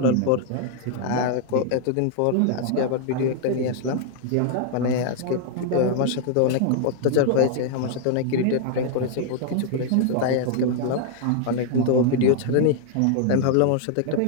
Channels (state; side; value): different; both; correlation 0.00